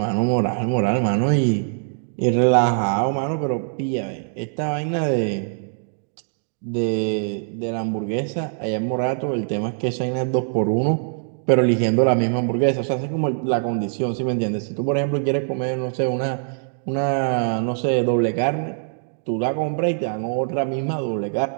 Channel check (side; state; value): left; silent; digital silence